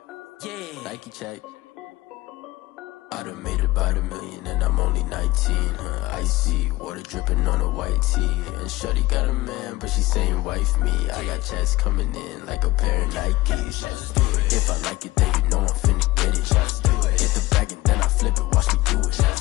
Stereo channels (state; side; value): quieter; right; 18.6 dB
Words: yeah. Nike check. I done made about $1 million and I'm only 19. Icy water dripping on a white tee. And shorty got a man, but she saying wife me. I got checks coming in like a pair of Nikes. If I like it, then you know I'm finna get it. Get the bag and then I flip it. Watch me do